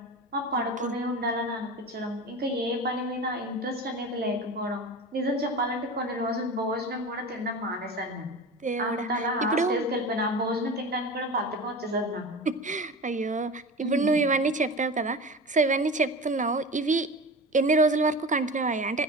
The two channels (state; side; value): normal; both; correlation 0.31